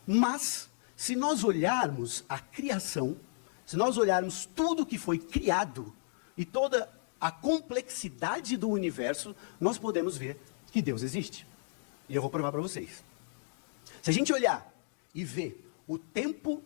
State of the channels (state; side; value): silent; right; digital silence